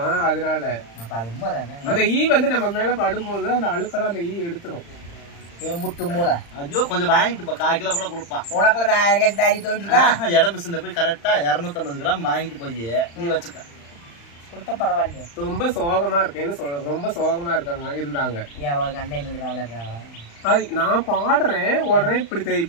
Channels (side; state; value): right; late; 35 ms